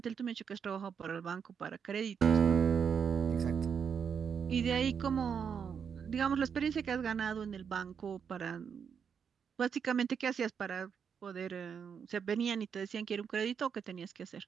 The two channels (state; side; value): quieter; left; 7.0 dB